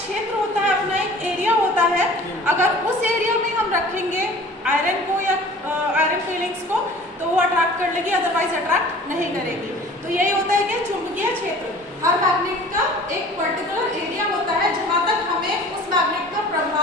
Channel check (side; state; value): both; normal; correlation 0.45